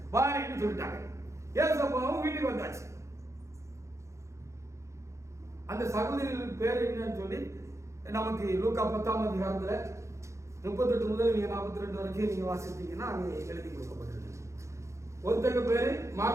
வாரின்னு சொல்லிட்டாங்க. ஏசப்பாவும் வீட்டுக்கு வந்தாச்சு. அந்த சகோதரிகளின் பேர் என்னன்னு சொல்லி நமக்கு லூக்கா 10ஆம் அதிகாரத்துல 38 முதல் நீங்க 42 வரைக்கும் நீங்க வாசித்தீங்கன்னா அங்கே எழுதி கொடுக்கப்பட்டிருக்கு. ஒருத்தங்க பேரு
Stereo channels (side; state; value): left; late; 0.14 ms